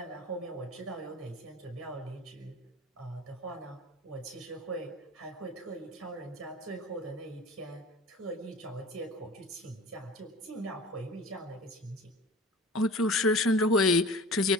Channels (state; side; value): normal; both; correlation 0.39